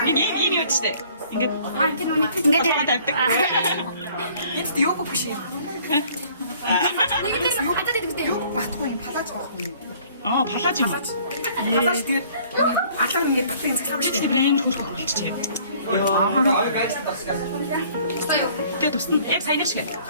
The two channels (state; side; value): inverted; both; correlation -0.56